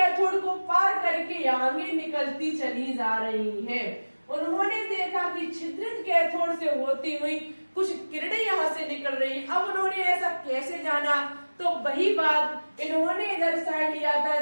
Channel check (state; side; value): inverted; both; correlation -1.00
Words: को पार करके आगे निकलती चली जा रही हैं। उन्होंने देखा कि छिद्रित कैथोड से होती हुई कुछ किरणें यहाँ से निकल रही हैं। अब उन्होंने ऐसा कैसे जाना, तो वही बात इन्होंने इधर साइड लिया था